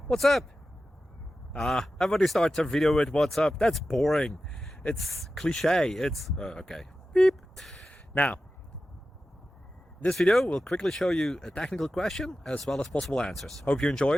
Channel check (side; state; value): both; normal; correlation 0.93